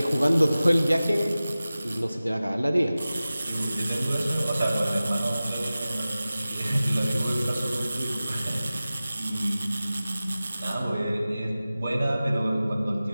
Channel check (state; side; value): inverted; both; correlation -0.96